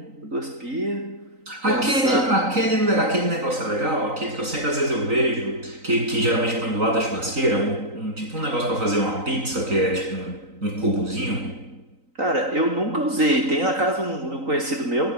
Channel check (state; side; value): late; left; 3.9 ms